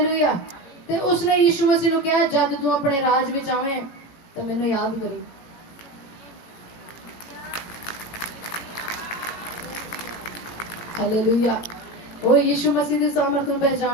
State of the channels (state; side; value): late; right; 18 ms